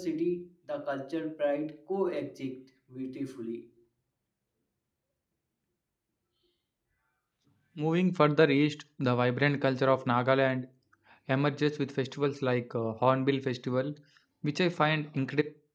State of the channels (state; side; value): identical; both; correlation 1.00